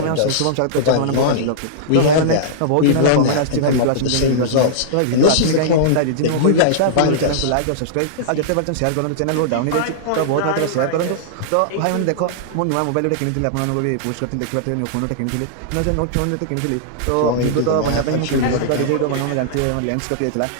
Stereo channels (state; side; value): different; both; correlation -0.02